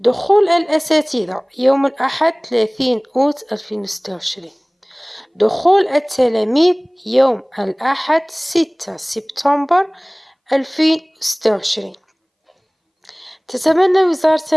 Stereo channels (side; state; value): both; identical; correlation 1.00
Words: الأساتذة يوم الأحد 30 أوت 2026. دخول التلاميذ يوم الأحد 6 سبتمبر 2026. تتمنى وزارة